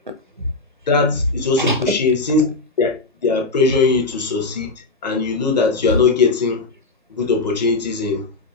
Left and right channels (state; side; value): quieter; right; 3.4 dB